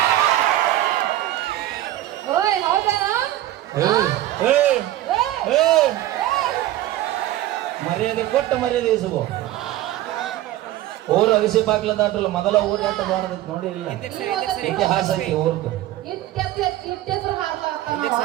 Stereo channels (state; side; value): quieter; left; 14.5 dB